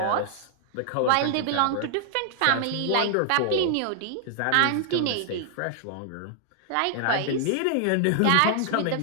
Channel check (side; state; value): both; different; correlation 0.00